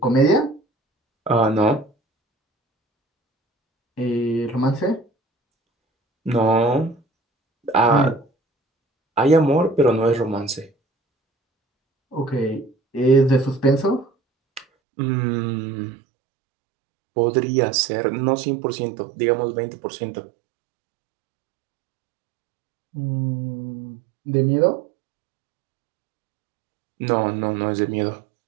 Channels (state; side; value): drops out; left; at 14.7 s